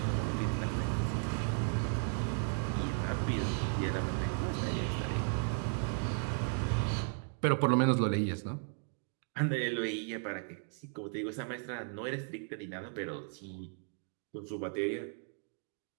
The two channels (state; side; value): silent; left; 54 dB below the other